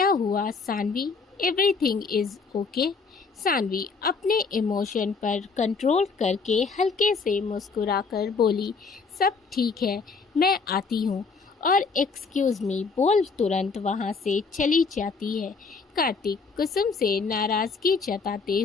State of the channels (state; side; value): quieter; right; 4.7 dB